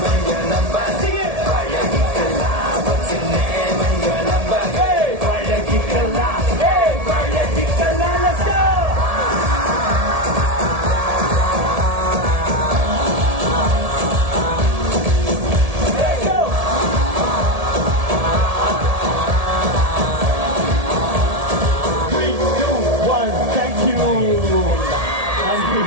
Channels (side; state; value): left; late; 1.7 ms